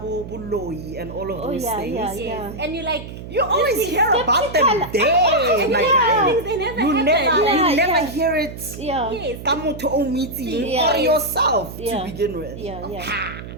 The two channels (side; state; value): right; noise; hum, 11 dB below the sound